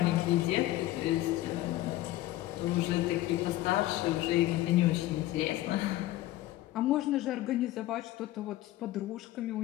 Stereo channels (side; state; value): right; quieter; 15.7 dB